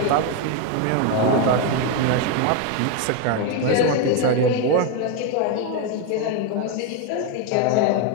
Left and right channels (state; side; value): different; both; correlation 0.02